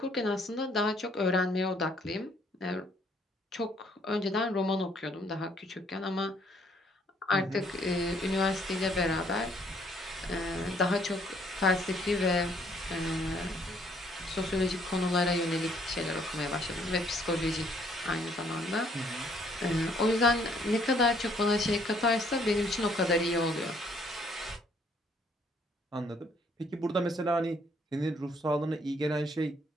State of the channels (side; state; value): both; normal; correlation 0.65